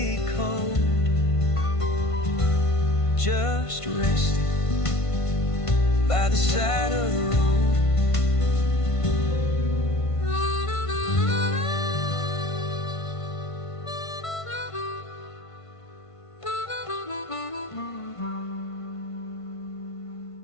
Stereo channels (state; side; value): late; right; 1.5 ms